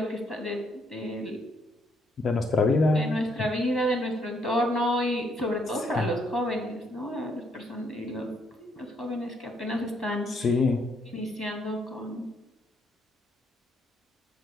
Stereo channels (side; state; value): both; normal; correlation 0.72